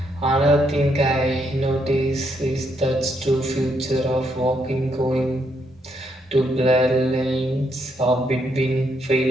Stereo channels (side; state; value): both; normal; correlation 0.75